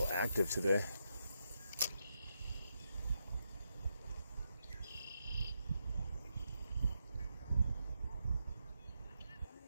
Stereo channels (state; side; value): inverted; both; correlation -0.83